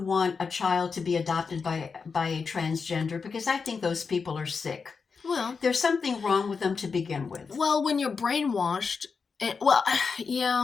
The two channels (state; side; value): quieter; right; 5.2 dB